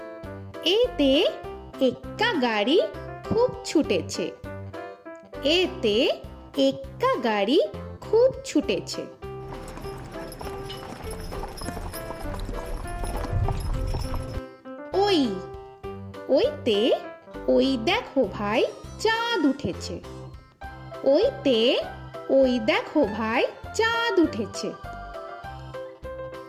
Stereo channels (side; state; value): both; identical; correlation 1.00